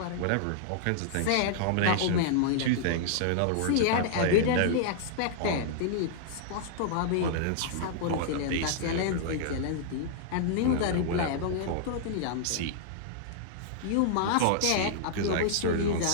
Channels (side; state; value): both; different; correlation -0.01